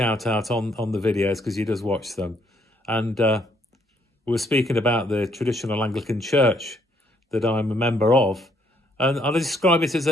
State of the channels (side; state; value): both; normal; correlation 0.69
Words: out on the videos because he does watch them. And we were speaking about the traditional Anglican Church that I'm a member of, and I'll describe it